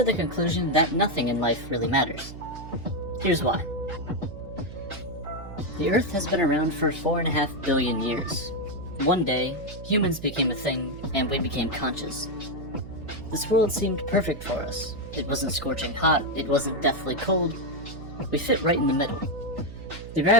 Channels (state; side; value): noise; right; hum, 12 dB below the sound